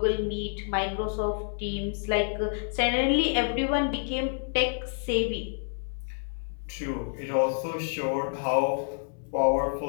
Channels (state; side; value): silent; right; 59 dB below the other